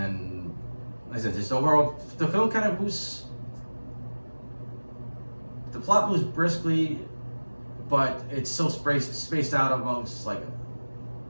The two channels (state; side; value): inverted; both; correlation -1.00